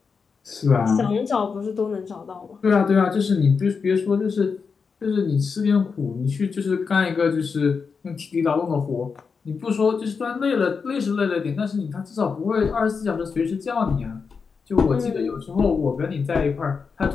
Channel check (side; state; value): right; quieter; 5.4 dB